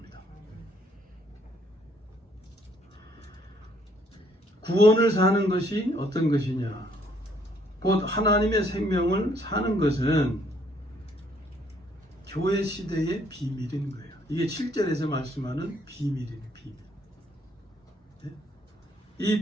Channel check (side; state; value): both; normal; correlation 0.66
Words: 구원을 사는 것이 어떤 것이냐? 곧 하나님의 생명을 사는 것은 교회 시대의 비밀인 거예요. 이게 7절에서 말씀하는 비밀이에요. 비밀. 네? 이